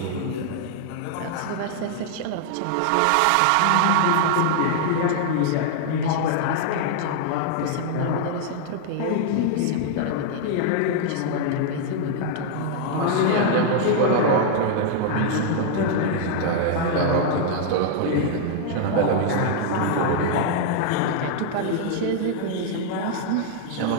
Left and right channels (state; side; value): different; both; correlation -0.01